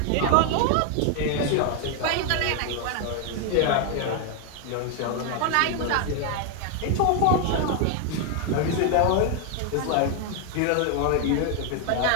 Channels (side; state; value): both; different; correlation 0.01